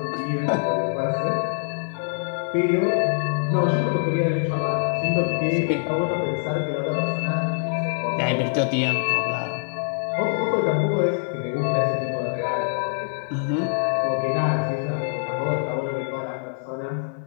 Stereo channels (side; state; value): right; silent; 57 dB below the other